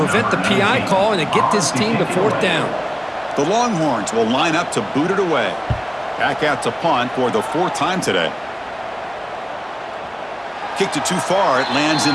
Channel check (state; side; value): identical; both; correlation 1.00